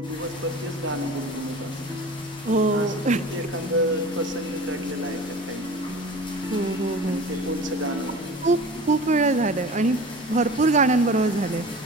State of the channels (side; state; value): both; normal; correlation 0.38